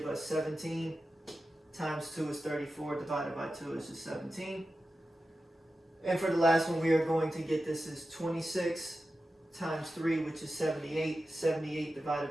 us 17 times 2 is 34, divided by 2 is just 17. And for the last one, we are going to get this is 26 times 3, which is 78. 78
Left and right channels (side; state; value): both; normal; correlation 0.92